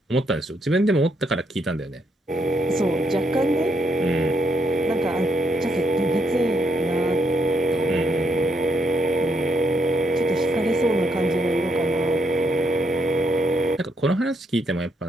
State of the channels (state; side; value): normal; both; correlation 0.76